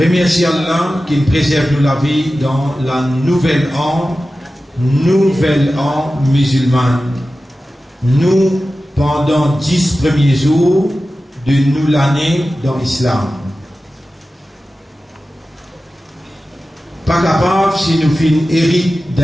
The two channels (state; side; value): normal; both; correlation 0.94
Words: Allah qui préserve nous la vie dans la nouvelle an musulmane. Nous, pendant 10 premiers jours de nous l'année dans l'islam. Pas capable si nous finissons hérite